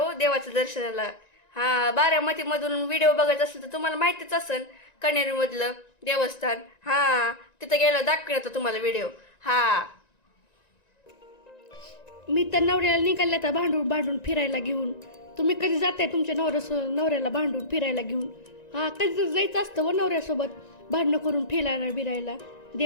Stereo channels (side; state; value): right; late; 1.9 ms